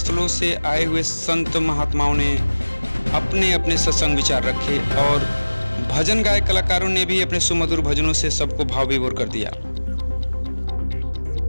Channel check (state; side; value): inverted; both; correlation -1.00